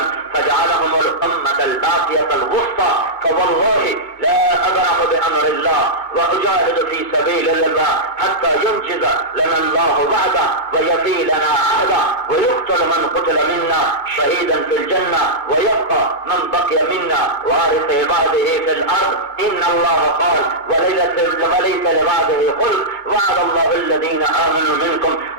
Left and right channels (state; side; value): late; right; 2.5 ms